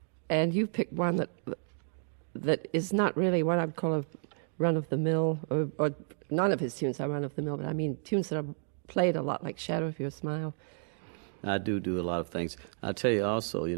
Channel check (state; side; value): silent; left; digital silence